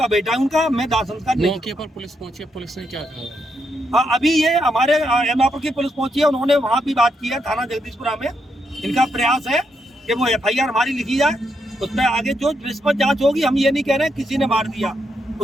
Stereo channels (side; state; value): both; normal; correlation 0.80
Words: बेटा हूँ उनका, मैं दाह संस्कार नहीं। मौके पर पुलिस पहुंची, पुलिस ने क्या कहा? हाँ, अभी ये हमारे एतमादपुर की पुलिस पहुंची है, उन्होंने वहाँ भी बात की है थाना जगदीशपुरा में। इनका प्रयास है कि वो एफआईआर हमारी लिखी जाए, उसमें आगे जो निष्पक्ष जांच होगी। हम ये नहीं कह रहे हैं किसी ने मार दिया,